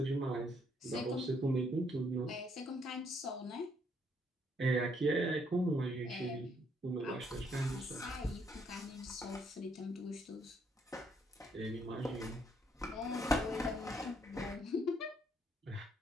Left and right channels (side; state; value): both; normal; correlation 0.71